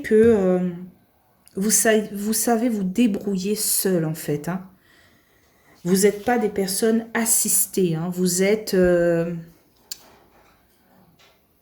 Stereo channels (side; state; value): both; identical; correlation 1.00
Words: vous savez vous débrouiller seul en fait. Hein. Vous n'êtes pas des personnes assistées. Hein. Vous êtes... je